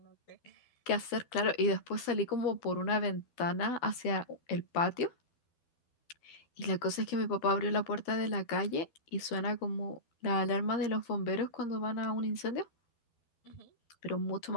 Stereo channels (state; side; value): late; right; 12 ms